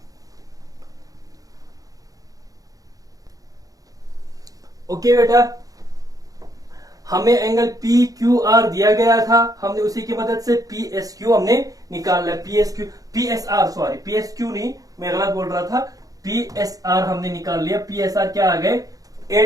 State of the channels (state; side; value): late; left; 0.17 ms